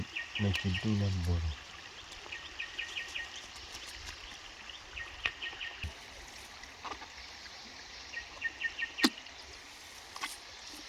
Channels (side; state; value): both; identical; correlation 1.00